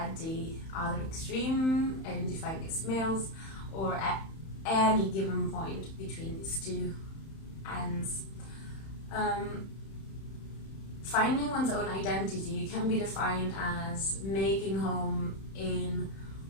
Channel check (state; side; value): late; right; 31 ms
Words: the other extreme, identifying as males, or at any given point between these two ends. Finding one's own identity can be defined as making home in